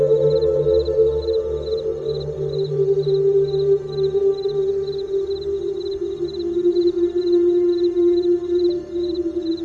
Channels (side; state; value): both; identical; correlation 1.00